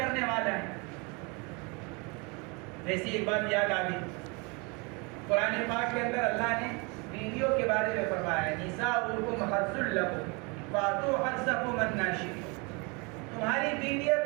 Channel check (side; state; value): left; quieter; 30.0 dB